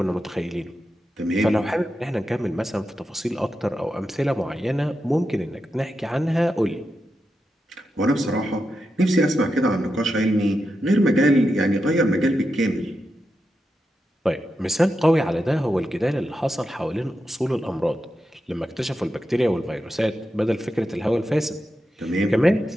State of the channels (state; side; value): normal; both; correlation 0.88